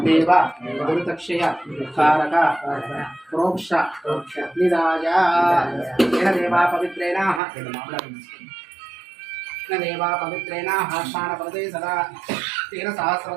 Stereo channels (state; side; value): drops out; left; at 7.4 s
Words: దేవ దురితక్షయ కారక ప్రోక్ష నిదాయ. దేవా పవిత్రేణ దేవా పవిత్రేణ స్నానపదే సదా తేన